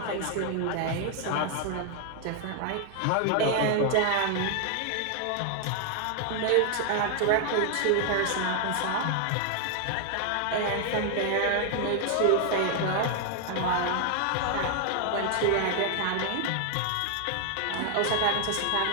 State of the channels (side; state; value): both; different; correlation 0.00